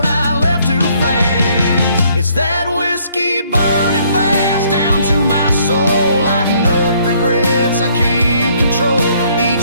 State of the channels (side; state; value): both; inverted; correlation -0.65